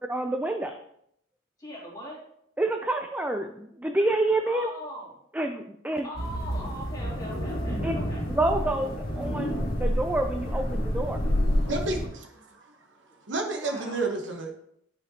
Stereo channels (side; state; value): both; normal; correlation 0.76